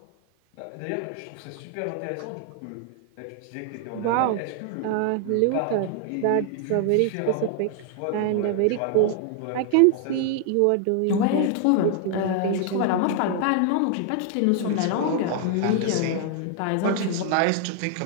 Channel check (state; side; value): different; both; correlation 0.00